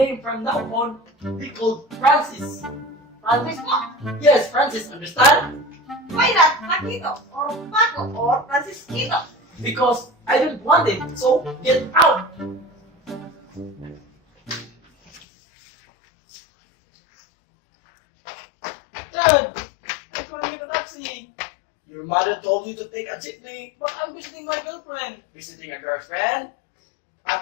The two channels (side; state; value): right; drops out; at 15.2 s